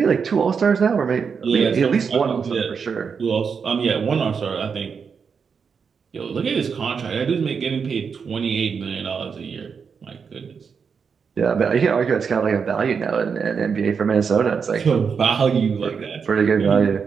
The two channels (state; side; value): quieter; left; 6.1 dB